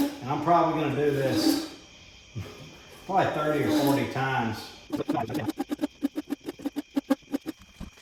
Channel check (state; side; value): identical; both; correlation 1.00